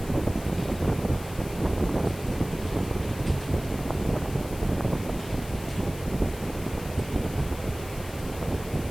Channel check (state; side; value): noise; left; hiss, 16 dB below the sound